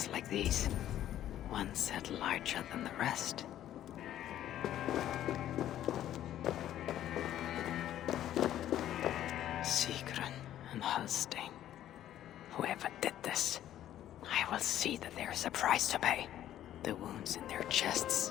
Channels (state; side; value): quieter; right; 12.0 dB